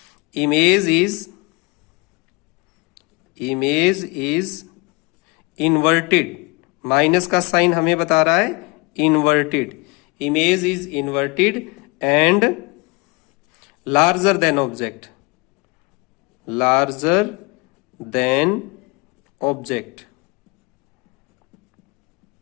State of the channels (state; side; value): quieter; right; 27.6 dB